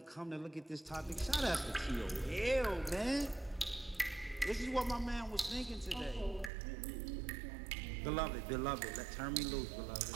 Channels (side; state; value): left; drops out; at 6.5 s